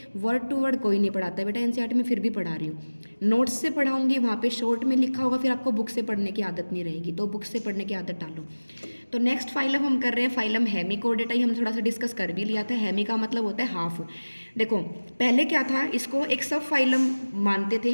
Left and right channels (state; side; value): inverted; both; correlation -1.00